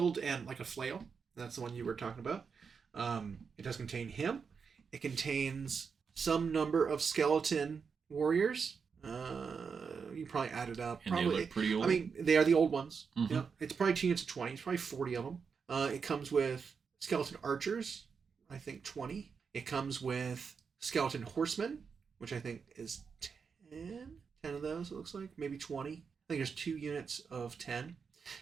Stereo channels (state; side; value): quieter; left; 5.8 dB